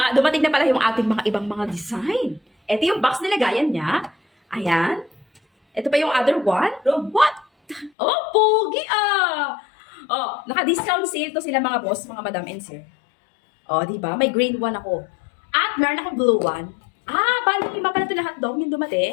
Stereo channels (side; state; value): right; drops out; at 7.9 s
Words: Dumating na pala yung ating mga ibang mga design. Eto yung box nilagayan niya. Ayan. Eto pa yung other one. What? Oh, pogi ah! Oh, naka-discount sale to sila mga boss, mga madam and sir. Oh, di ba? May green one ako. At meron akong blue one. Ah, bali, lima pala ito lahat daw yung